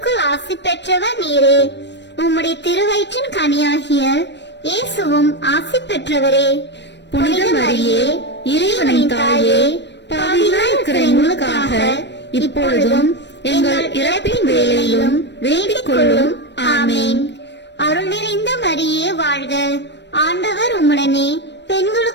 ஆசி பெற்றவர் நீரே. உம்முடைய திருவயிற்றின் கனியாகிய இயேசுவும் ஆசி பெற்றவரே. புனித மரியே இறைவனின் தாயே, பாவிகளாய் இருக்கிற எங்களுக்காக இப்பொழுதும் எங்கள் இறப்பின் வேளையிலும் வேண்டிக் கொள்ளும். ஆமேன். அருள் நிறைந்த மரியே வாழ்க. ஆண்டவர் உம்முடனே,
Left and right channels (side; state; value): right; late; 0.51 ms